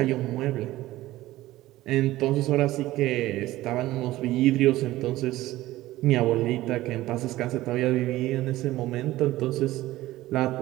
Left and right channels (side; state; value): left; quieter; 16.5 dB